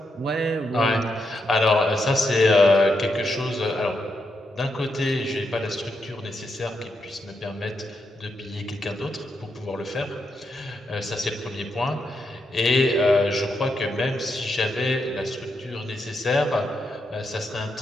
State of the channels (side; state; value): both; normal; correlation 0.82